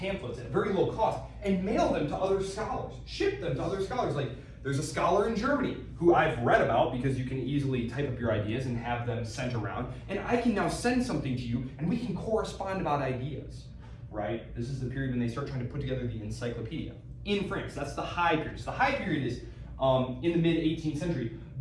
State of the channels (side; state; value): both; identical; correlation 1.00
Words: at very low cost and mail them to other scholars, ship them to other scholars. Like, there's a scholar in Germany who I've read about because you can easily type up your ideas and have them sent around. And I can now send something to you and we can correspond about ideas, right? This is the period when they start trying to put together the encyclopedia. In France, that's the high period. So the high period is in the mid-18th century.